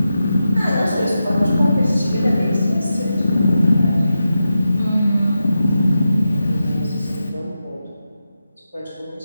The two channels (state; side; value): inverted; both; correlation -0.90